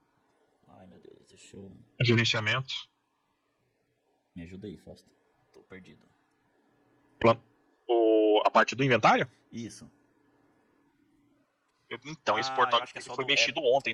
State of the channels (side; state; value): both; identical; correlation 1.00